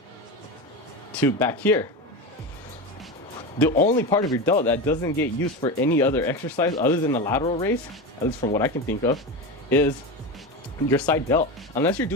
to back here. The only part of your delt that doesn't get used for any other exercise other than the lateral raise, at least from what I can think of, is your side delt. Unless you're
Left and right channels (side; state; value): both; normal; correlation 0.21